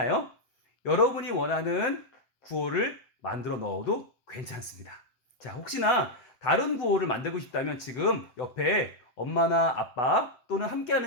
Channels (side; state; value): right; late; 7.7 ms